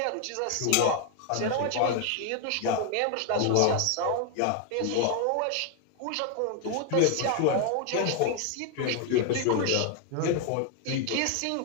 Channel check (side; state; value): both; different; correlation 0.01